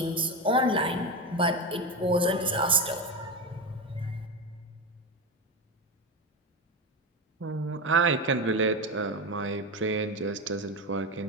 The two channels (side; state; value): both; normal; correlation 0.17